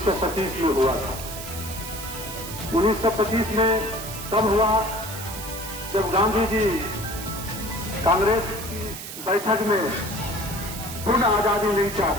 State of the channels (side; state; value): right; noise; hiss, 10 dB below the sound